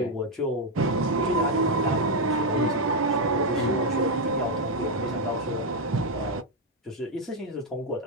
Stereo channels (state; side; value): normal; both; correlation 0.01